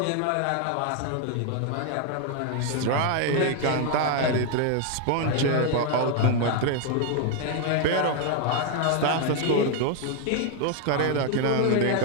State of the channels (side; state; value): both; different; correlation 0.00